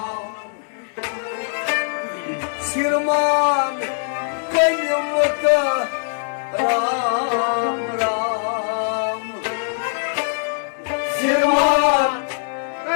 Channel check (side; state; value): right; silent; digital silence